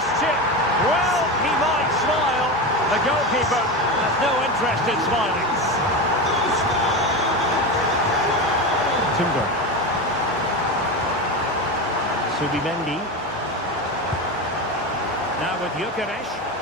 chip. Well, he might smile. The goalkeeper has no interest in smiling. Timber. Subimendi. Now with Gyökeres.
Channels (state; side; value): normal; both; correlation 0.20